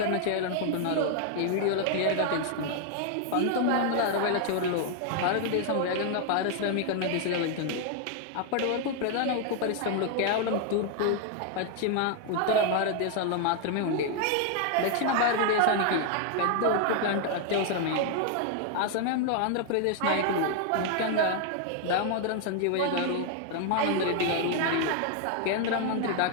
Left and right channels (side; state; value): both; different; correlation 0.00